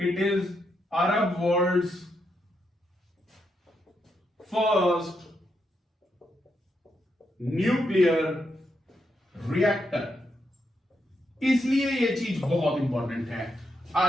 is Arab world's first nuclear reactor. इसलिए यह चीज बहुत इंपॉर्टेंट है,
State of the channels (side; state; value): both; normal; correlation 0.81